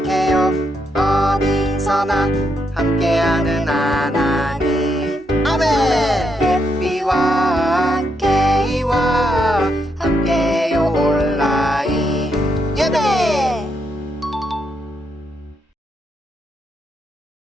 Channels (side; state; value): both; normal; correlation 0.79